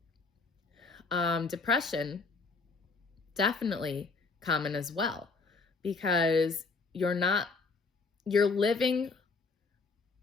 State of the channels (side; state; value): right; quieter; 4.3 dB